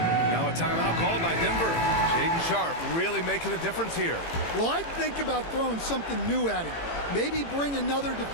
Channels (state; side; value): late; right; 18 ms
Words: a timeout called by Denver. Shaedon Sharpe really making a difference here. Well, I'd think about throwing something new at him. Maybe bring another